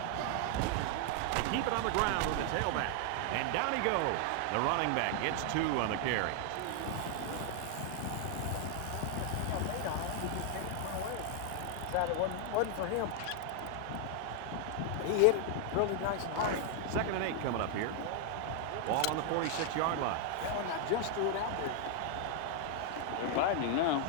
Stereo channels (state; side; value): different; both; correlation 0.00